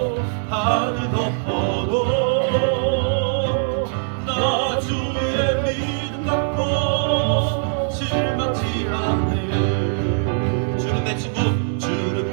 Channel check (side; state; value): left; silent; digital silence